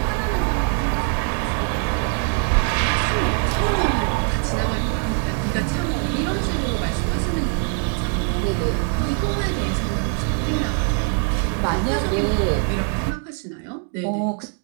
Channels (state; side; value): quieter; left; 39.2 dB